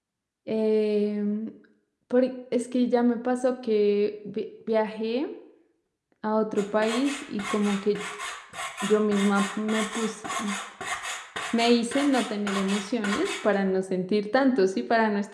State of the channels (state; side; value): identical; both; correlation 1.00